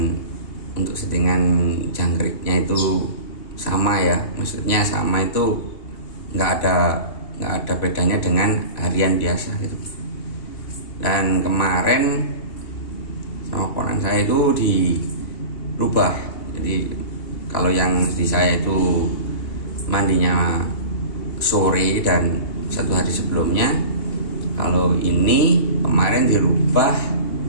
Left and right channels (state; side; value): late; right; 2.8 ms